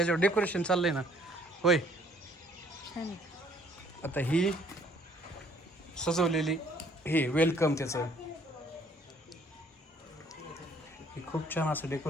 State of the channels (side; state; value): both; normal; correlation 0.61